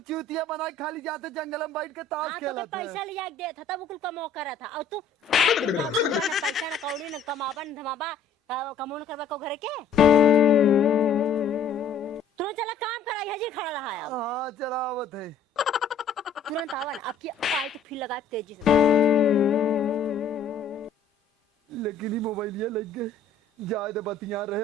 बना के खाली जाते, जंगल में बैठ के ताश हाँ, तो खेलत है। पैसा लिया के देता तब कुल कमो करा था। और तू ना पैसा ना कौड़ी ना कमाबा न धमाबा, कमो न करबा को घर के। तू चला काम करा, हजी खड़ा रहा है। हाँ चलावत है। तुरंत आवन, अब की आई तो फिर लगा तेजी से। लेकिन ही मोबाइल ये लग गए, जाए तो बतिया रहे,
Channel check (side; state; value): right; quieter; 4.6 dB